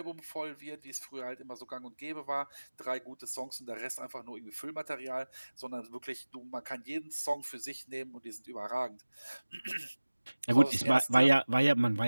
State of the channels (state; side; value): inverted; both; correlation -1.00